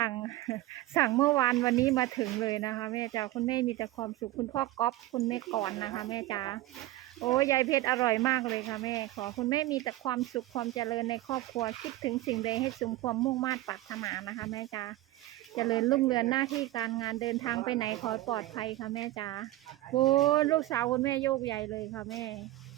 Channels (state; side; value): quieter; left; 16.5 dB